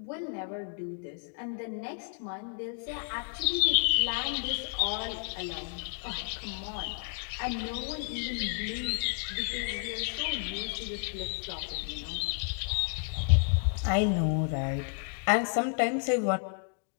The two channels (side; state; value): right; silent; 57 dB below the other